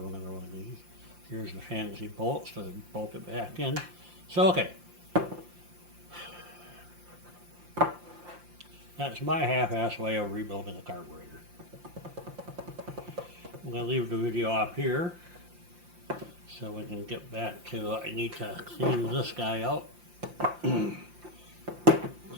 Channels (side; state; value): left; late; 5.7 ms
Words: another one of these. Here's the fancy bolts to bolt it back in. So, okay. That's my half-ass way of rebuilding a carburetor. I'm going to leave the video up here so we can get back to, I need to clean this guy out. Clean